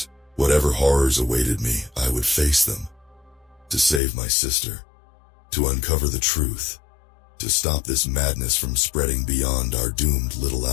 Whatever horrors awaited me, I would face them. To save my sister, to uncover the truth, to stop this madness from spreading beyond our doomed little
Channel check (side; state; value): right; drops out; at 4.0 s